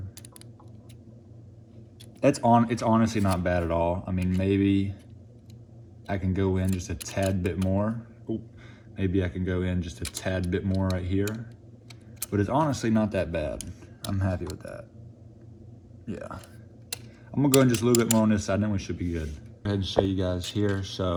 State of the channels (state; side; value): identical; both; correlation 1.00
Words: It's honestly not bad at all. I mean, maybe I can go in just a tad bit more. Ooh, maybe I can go in just a tad bit more right here. But it's honestly not that bad. I'm happy with that. Yeah. I'm gonna go in just a little bit more on this side, then we should be good. Go ahead and show you guys here.